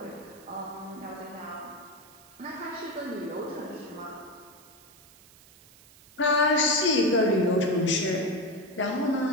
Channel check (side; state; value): right; noise; hiss, 24 dB below the sound